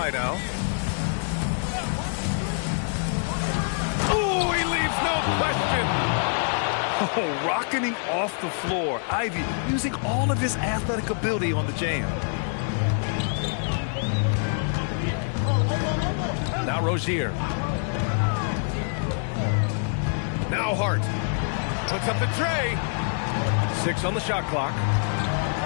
now. Oh, he leaves no question. Oh, rocketing off the floor. Ivy using all of his athletic ability on the jam. Now Rozier. Now Hart. Puts up the tray. 6 on the shot clock.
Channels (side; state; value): right; silent; digital silence